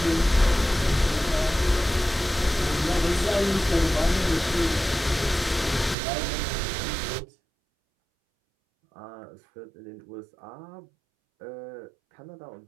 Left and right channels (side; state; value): left; drops out; at 6.0 s